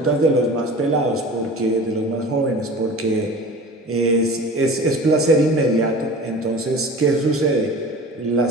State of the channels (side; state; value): both; normal; correlation 0.38